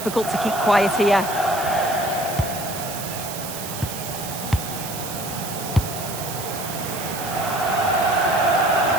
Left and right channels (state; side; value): noise; right; hiss, 8 dB below the sound